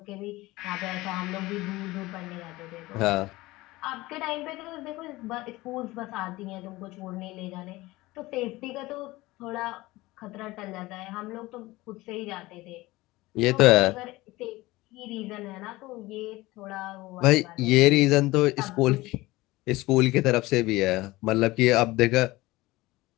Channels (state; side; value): quieter; right; 19.7 dB